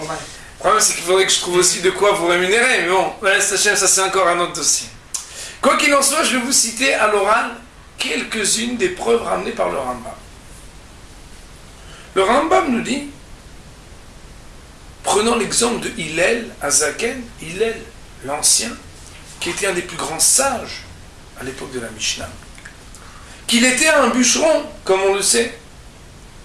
problème, c'est qu'il faudrait que je trouve aussi de quoi vous rémunérer, mais bon, Bezrat Hashem, ça c'est encore un autre dossier. Quoi qu'il en soit, je vais vous citer à l'oral quelques-unes des preuves ramenées par le Rambam. Le Rambam nous dit, prenons l'exemple de Hillel Azaken, Hillel l'ancien, qui était un des plus grands sages à l'époque de la Mishnah, qu'il était un bûcheron, comme on le sait,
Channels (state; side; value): identical; both; correlation 1.00